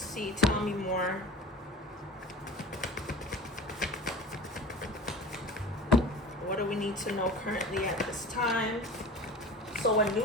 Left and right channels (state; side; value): normal; both; correlation 0.38